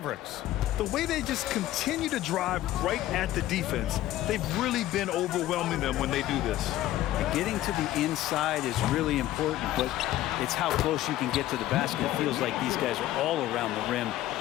The way they just continue to drive right at the defense, they've really been overwhelming them when they do this. Getting to the inside is really important, but it's how close you can get to the basket. It feels like these guys are all around the rim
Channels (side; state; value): right; quieter; 14.4 dB